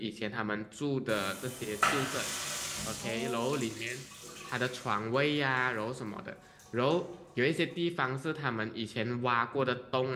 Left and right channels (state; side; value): identical; both; correlation 1.00